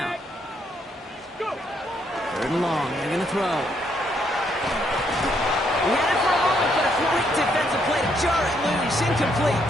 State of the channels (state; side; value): normal; both; correlation 0.73